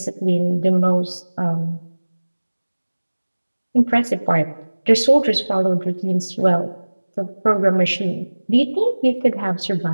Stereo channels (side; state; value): both; inverted; correlation -1.00